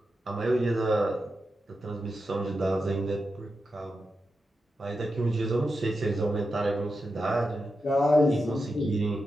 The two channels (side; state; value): both; normal; correlation 0.88